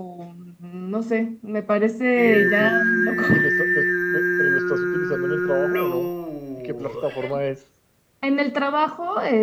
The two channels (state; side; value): identical; both; correlation 1.00